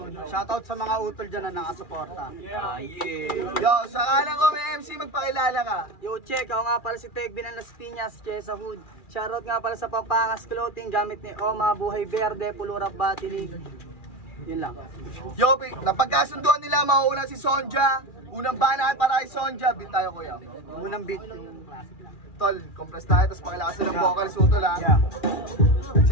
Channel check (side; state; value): right; late; 2.4 ms